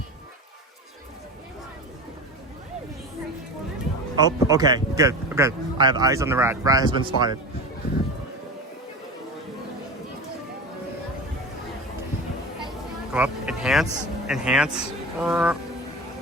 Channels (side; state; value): both; normal; correlation 0.30